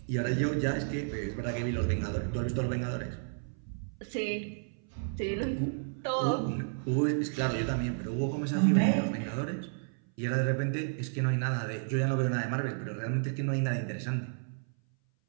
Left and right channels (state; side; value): silent; left; 56 dB below the other